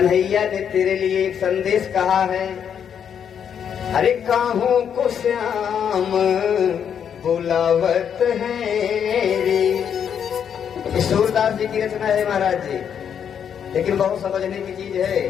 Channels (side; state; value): right; quieter; 8.1 dB